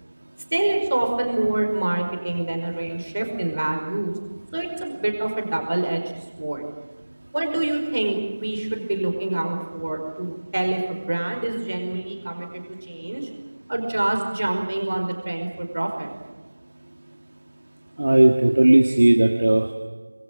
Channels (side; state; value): both; inverted; correlation -1.00